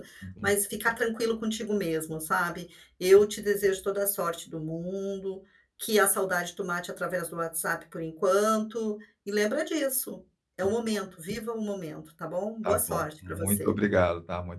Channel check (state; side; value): identical; both; correlation 1.00